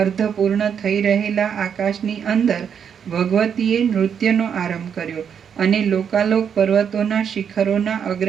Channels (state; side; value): quieter; left; 7.7 dB